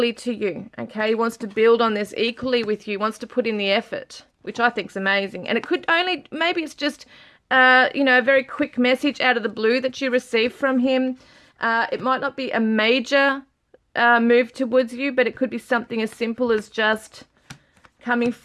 to you, okay? He wants to build on this equally with you, wants to put in the effort, which I think is amazing. And it could only, maybe it's just, you know, a very quick message out of the blue that you receive from him. It might not be a major move towards you, but it could be something as simple as just coming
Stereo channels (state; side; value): identical; both; correlation 1.00